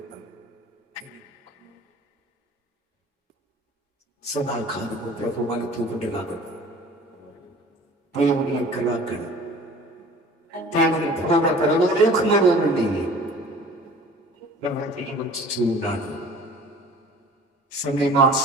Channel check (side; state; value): both; normal; correlation 0.46